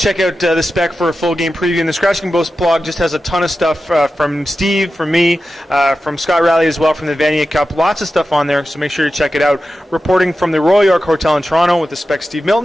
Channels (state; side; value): normal; both; correlation 0.92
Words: out the Spec for a full game preview. And the Scratching Boast blog just has a ton of stuff from Steve, from me, from Scott Raleigh as well, from the Vanier Cup. Lots of stuff on there, so make sure you check it out. Reporting from the Royal York Hotel in Toronto with the Spec Steve